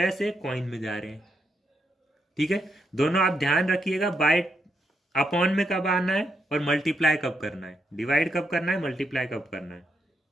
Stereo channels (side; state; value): both; normal; correlation 0.80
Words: से कॉइन में जा रहे हैं। ठीक है, दोनों आप ध्यान रखिएगा, बाय अपॉन में कब आना है और मल्टीप्लाई कब करना है, डिवाइड कब करना है, मल्टीप्लाई कब करना है।